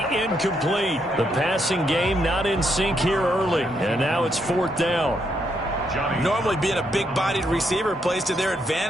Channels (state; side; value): normal; both; correlation 0.77